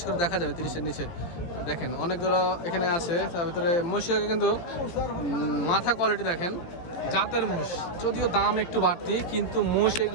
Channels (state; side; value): late; right; 17 ms